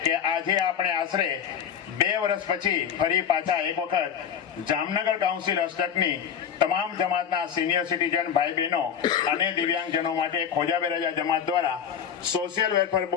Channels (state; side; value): quieter; right; 8.2 dB